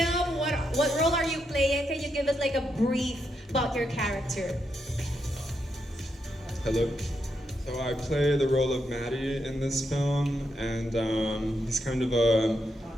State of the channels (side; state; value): both; normal; correlation 0.82